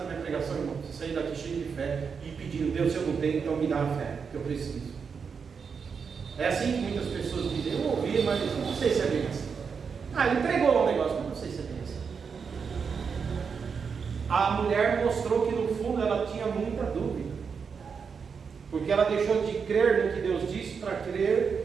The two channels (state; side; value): quieter; left; 5.9 dB